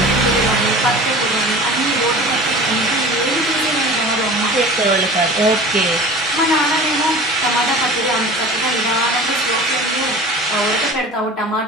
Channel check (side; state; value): both; normal; correlation 0.39